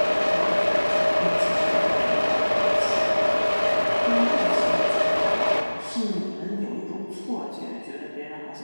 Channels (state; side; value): inverted; both; correlation -1.00